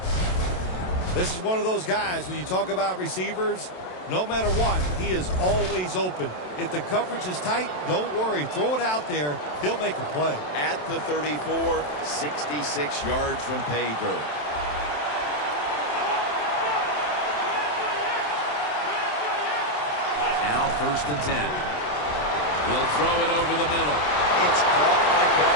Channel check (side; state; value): right; late; 27 ms